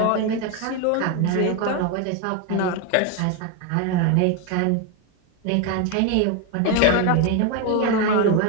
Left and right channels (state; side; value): different; both; correlation 0.01